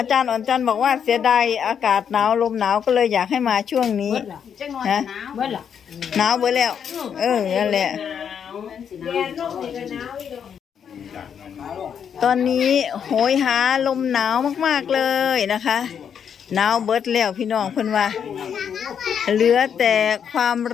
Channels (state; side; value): quieter; right; 7.8 dB